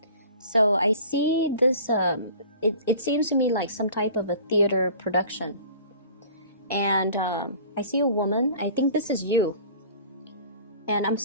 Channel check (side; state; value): both; inverted; correlation -0.45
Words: So, I see this, it seems to me like some type of a theater production. And I see a woman. I think this is you. And I'm